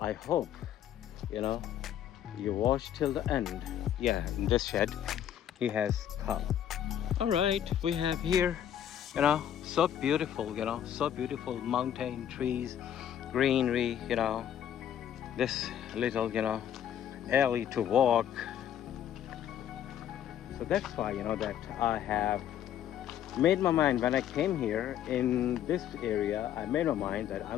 hope you watch till the end. Yeah, in this shed he has cow. All right, we have here So beautiful, you know, so beautiful. Mountain, trees, greenery, you know. This little, you know, alley to walk. So that's why, you know, that I have made my mind when I came here in this area. I made my mind that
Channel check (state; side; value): quieter; right; 10.3 dB